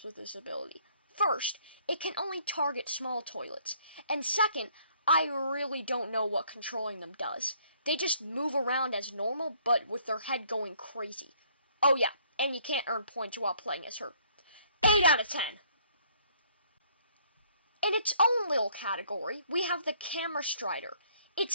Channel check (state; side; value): inverted; both; correlation -0.63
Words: with this ability. First, it can only target small toilets. And second, I really don't know what controlling them does. They just move around as normal, but with their head going crazy. Oh yeah, and you can't earn points while playing as her. 8 out of 10. In its own little category, we have the Camera Strider.